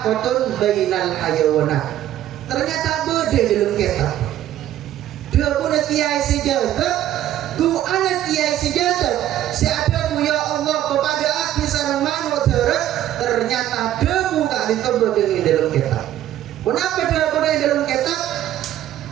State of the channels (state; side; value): quieter; left; 12.4 dB